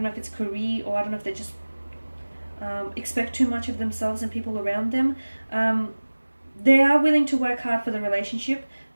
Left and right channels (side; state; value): both; inverted; correlation -1.00